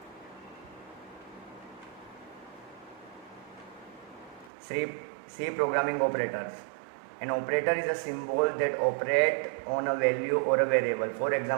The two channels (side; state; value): left; drops out; at 4.5 s